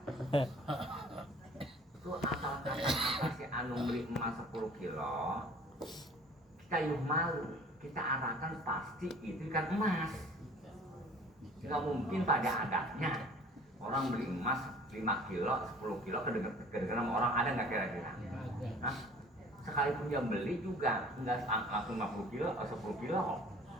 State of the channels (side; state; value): both; normal; correlation 0.49